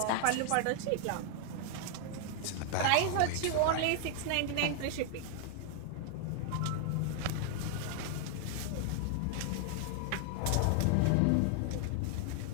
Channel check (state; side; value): different; both; correlation 0.00